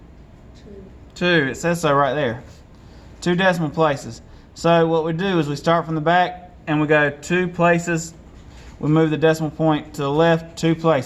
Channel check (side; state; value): both; identical; correlation 1.00